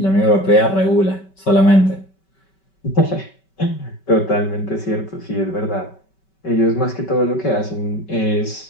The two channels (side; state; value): right; late; 5.2 ms